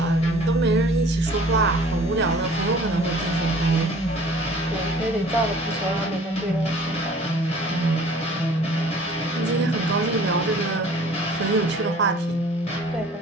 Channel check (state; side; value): normal; both; correlation 0.50